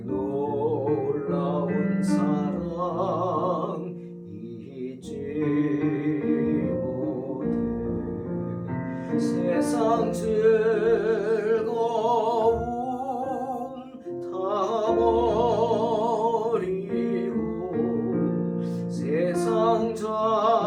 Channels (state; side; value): identical; both; correlation 1.00